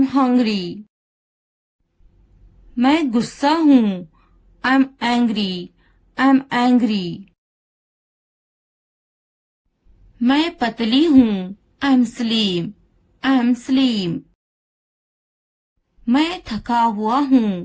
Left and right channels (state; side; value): identical; both; correlation 1.00